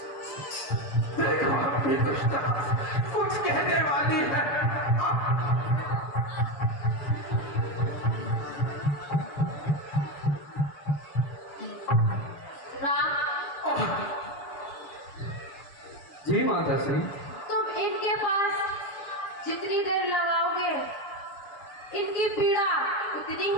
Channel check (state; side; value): late; right; 6.9 ms